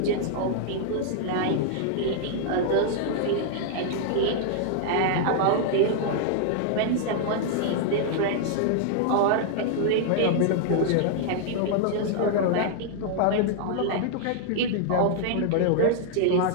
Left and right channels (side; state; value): both; different; correlation -0.01